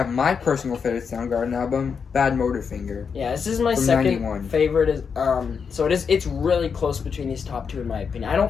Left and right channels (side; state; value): right; quieter; 6.2 dB